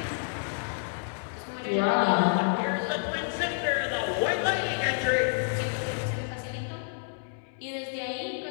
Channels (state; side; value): silent; right; 58 dB below the other